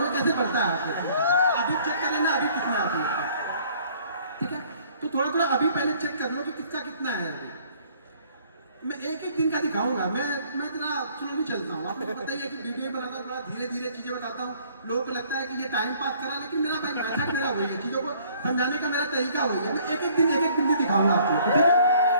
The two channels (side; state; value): both; inverted; correlation -0.58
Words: कैसे बढ़ता है आपको अभी चेक कर लेना, अभी कितना है, ठीक है? तो थोड़ा थोड़ा अभी पहले चेक कर लो कि कितना कितना है अभी। मैं एक दिन का दिखाऊंगा। मैं इतना स्लोली चलता हूँ, आपको पता ही है कि वीडियो बनाता थोड़ा धीरे धीरे चीजें बताता हूँ। लोगों को लगता है कि ये टाइम पास करा, लेकिन मेरा भाई मेथड मेरा वही है, चीजों को समझाने का मेरा तरीका वही है। मैं एक दिन भी दिखाऊंगा आपको, ठीक है?